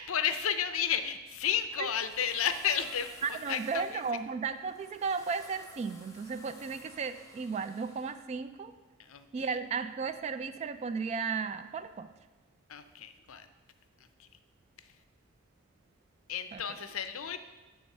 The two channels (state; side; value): normal; both; correlation -0.02